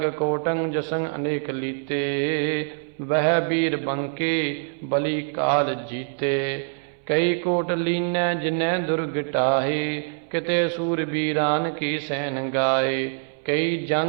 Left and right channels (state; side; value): silent; left; 62 dB below the other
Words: ਕੋਟੰ ਜਸੰ ਅਨੇਕ ਲੀਤੇ। ਵਹਿ ਬੀਰ ਬੰਕੇ ਬਲੀ ਕਾਲ ਜੀਤੇ। ਕਈ ਕੋਟ ਲੀਨੈ ਜਿਨੈ ਦੁਰਗ ਟਾਹੇ। ਕਿਤੇ ਸੂਰ ਬੀਰਾਨ ਕੀ ਸੈਨ ਗਾਏ। ਕਈ